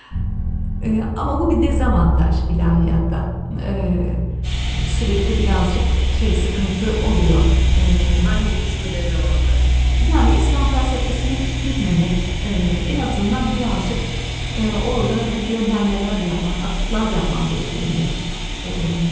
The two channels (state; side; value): identical; both; correlation 1.00